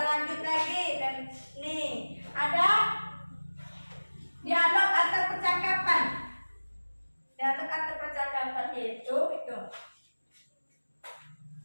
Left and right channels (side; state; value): both; inverted; correlation -1.00